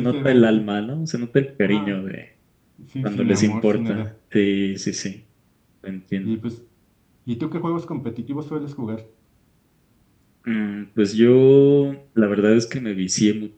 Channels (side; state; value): both; identical; correlation 1.00